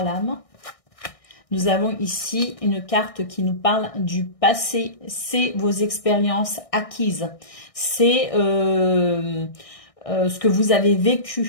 lames. Nous avons ici une carte qui nous parle du passé. C'est vos expériences acquises. C'est ce que vous avez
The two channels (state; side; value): late; right; 1.6 ms